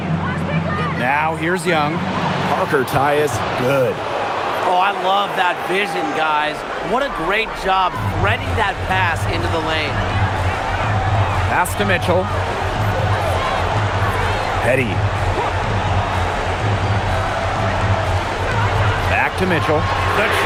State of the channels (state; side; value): identical; both; correlation 1.00